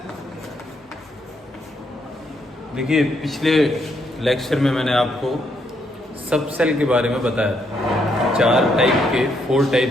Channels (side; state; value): both; normal; correlation 0.75